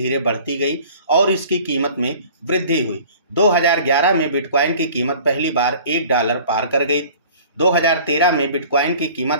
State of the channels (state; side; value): inverted; both; correlation -0.47